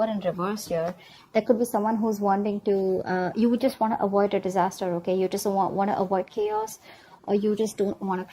in reverse here, there could be someone who's wanting to, you would just want to avoid a disaster, okay? You just want to avoid chaos, or you just don't want to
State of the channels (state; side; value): identical; both; correlation 1.00